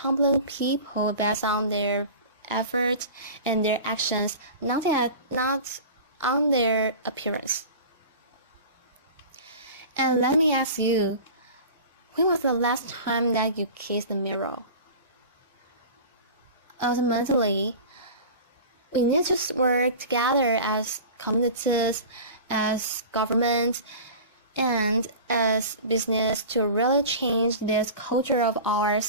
people based on their efforts and their actions, not on their appearance. And let me ask you, when was the last time that you kissed the mirror? Ultimately, we need to work together as communities, as governments, and as business to really change this culture of ours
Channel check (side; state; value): both; inverted; correlation -0.36